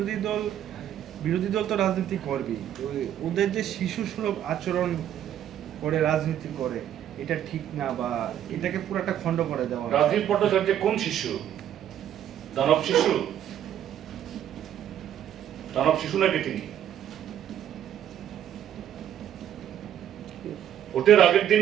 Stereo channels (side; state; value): left; quieter; 10.6 dB